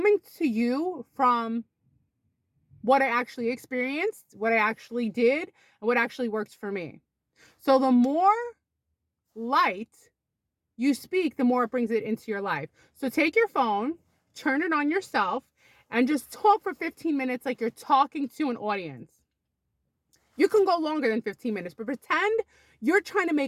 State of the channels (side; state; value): both; identical; correlation 1.00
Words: to you from what I actually experienced, what I actually did, and what actually works for me. So the more light you speak, the more it brings it into your life. So take your phone, turn it on yourself, and just talk for 15 minutes like you're talking to an audience. You can go longer than 15 minutes, but pretend you're trying to